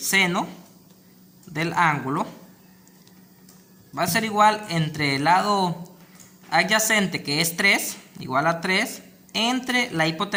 del ángulo va a ser igual entre el lado adyacente que es 3, igual a 3, entre la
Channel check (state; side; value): identical; both; correlation 1.00